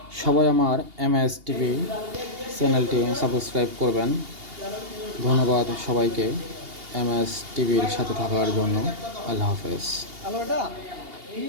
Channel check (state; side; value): late; left; 2.8 ms